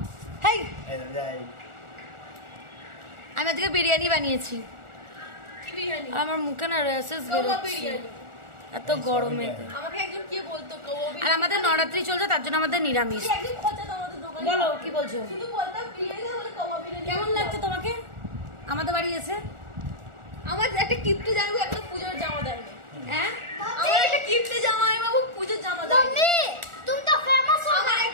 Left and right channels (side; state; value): left; late; 1.4 ms